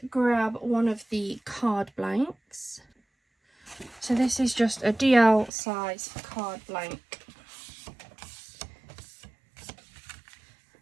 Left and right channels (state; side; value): drops out; left; at 5.5 s